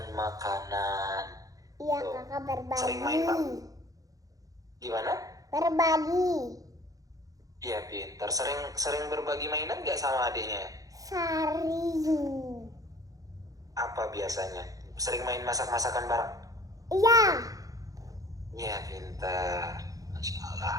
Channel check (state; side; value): late; left; 0.17 ms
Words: makanan. Iya, Tuh. kakak berbagi. Sering main, Pak? Gimana? Berbagi. Iya, pintar. Sering berbagi mainan nggak sama adiknya? Sering. Apa biasanya? Sering main masak-masakan bareng? Iya. Iya, pintar. Masya